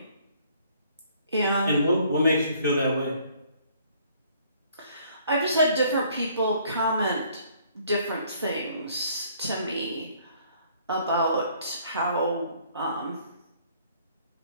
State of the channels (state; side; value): inverted; both; correlation -0.61